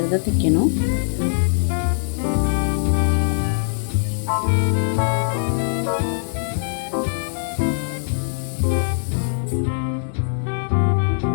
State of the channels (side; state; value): right; silent; digital silence